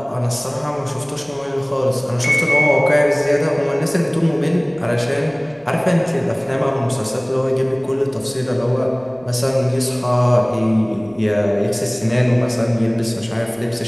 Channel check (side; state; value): right; noise; rumble, 28 dB below the sound